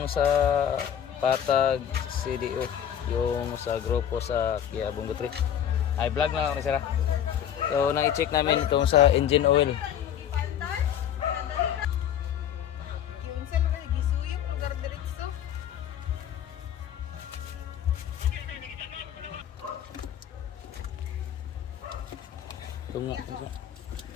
sa Patag CDO, yung sa grupo sa Kia Bungo 3. Ay, vlog na lang kami sira. So, nang i-check namin kung sa engine oil. Tungo.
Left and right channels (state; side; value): quieter; right; 9.6 dB